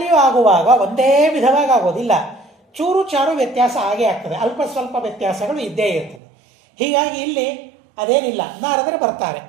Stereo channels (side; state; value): left; drops out; at 6.2 s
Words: ಆಗುವಾಗ ಒಂದೇ ವಿಧವಾಗಿ ಆಗೋದಿಲ್ಲ, ಚೂರು ಚಾರು ವ್ಯತ್ಯಾಸ ಆಗೇ ಆಗ್ತದೆ. ಅಲ್ಪ ಸ್ವಲ್ಪ ವ್ಯತ್ಯಾಸಗಳು ಇದ್ದೇ ಇರ್ತದೆ. ಹೀಗಾಗಿ ಇಲ್ಲಿ ಅದೇನಿಲ್ಲ. ನಾರದರು ಬರ್ತಾರೆ,